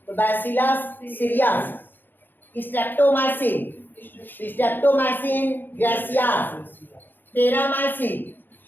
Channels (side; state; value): right; late; 0.092 ms